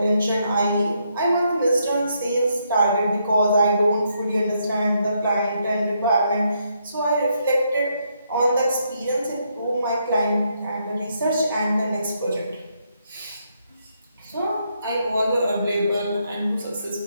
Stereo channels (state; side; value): inverted; both; correlation -0.76